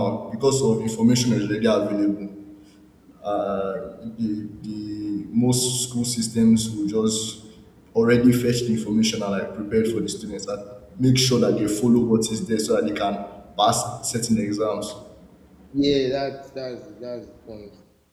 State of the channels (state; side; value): identical; both; correlation 1.00